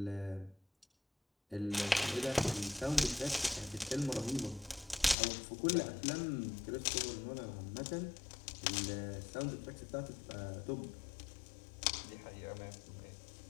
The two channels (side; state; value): right; drops out; at 5.2 s